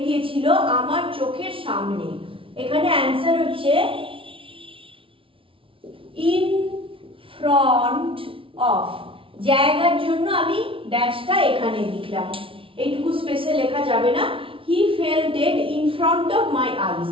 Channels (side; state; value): left; late; 0.25 ms